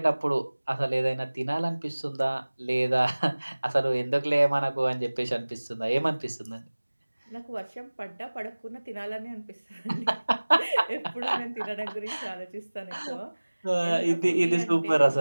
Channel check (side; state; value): both; inverted; correlation -1.00